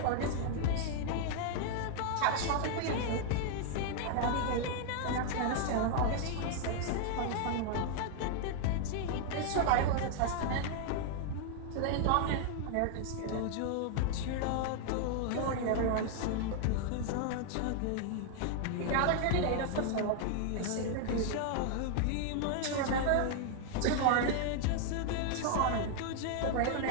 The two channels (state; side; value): different; both; correlation 0.00